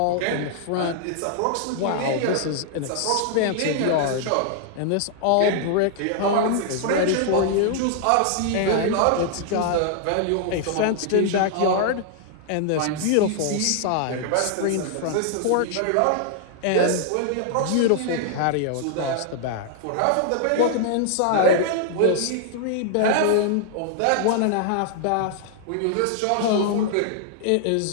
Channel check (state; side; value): different; both; correlation -0.01